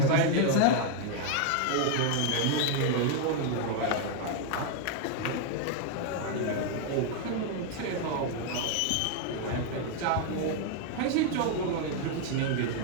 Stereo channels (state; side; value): different; both; correlation 0.00